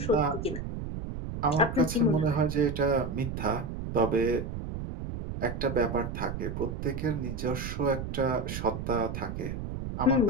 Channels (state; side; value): noise; right; rumble, 5 dB below the sound